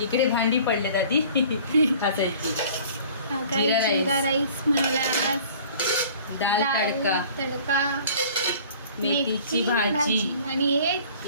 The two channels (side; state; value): both; inverted; correlation -0.49